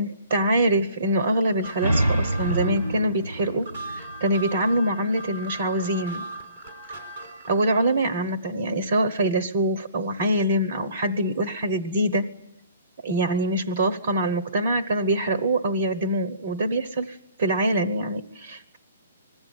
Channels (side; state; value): both; inverted; correlation -0.54